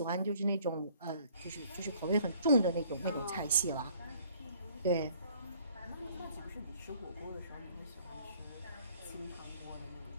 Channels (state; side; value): inverted; both; correlation -0.58